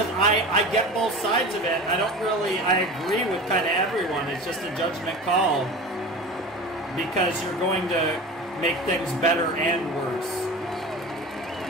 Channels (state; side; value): normal; both; correlation 0.33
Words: I get both sides of it. I agree with kind of everyone. It's just a judgment call. Because you're going to make things better and worse.